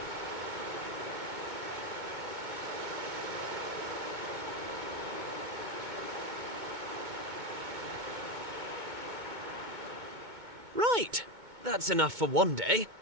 Right, that's enough for one day.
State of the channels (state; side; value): late; left; 2.2 ms